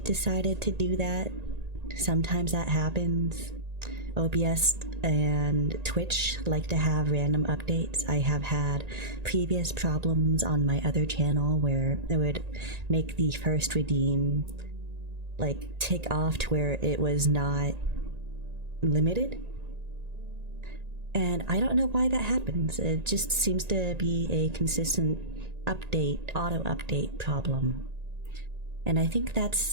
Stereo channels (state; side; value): late; left; 1.9 ms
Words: decided to do that. Sometimes that happens. OBS and Twitch like to have random updates. I have had previous problems on my other channel where it would make the first redeem like tick off to where it was not limited. And I don't know why that happens. It just seems to be a consistent update, auto update problem. And I think